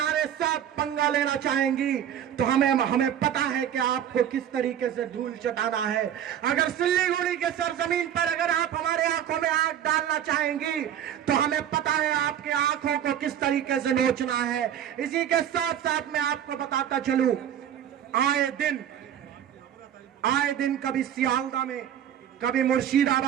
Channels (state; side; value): quieter; left; 10.0 dB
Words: साथ पंगा लेना चाहेंगी तो हमें पता है कि आपको किस तरीके से धूल चटाना है। अगर सिल्लीगुड़ी के सरजमीन पर अगर आप हमारे आंखों में आंख डालना चाहेंगी तो हमें पता है आपकी आंखों को किस तरीके से नोचना है। इसी के साथ साथ मैं आपको बताता चलूं, आए दिन कभी सियालदा में, कभी